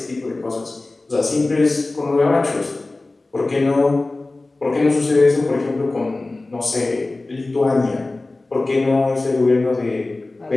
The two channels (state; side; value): quieter; right; 3.1 dB